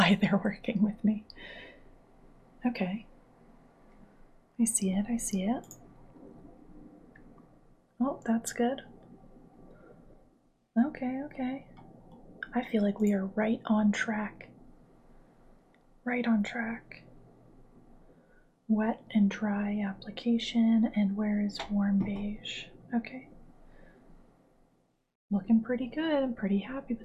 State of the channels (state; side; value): identical; both; correlation 1.00